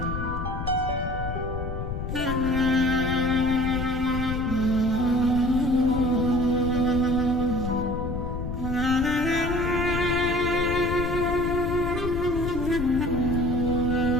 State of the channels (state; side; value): noise; left; rumble, 5 dB below the sound